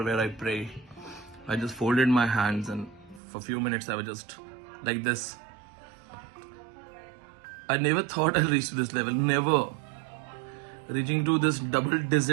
where I pray. I just folded my hands and for a few minutes I was just like this. I never thought I'll reach to this level. Never. Reaching to this double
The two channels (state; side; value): drops out; left; at 3.2 s